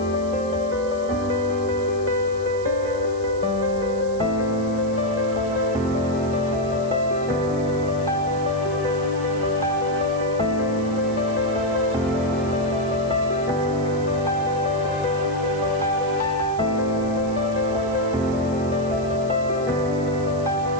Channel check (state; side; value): noise; right; hiss, 21 dB below the sound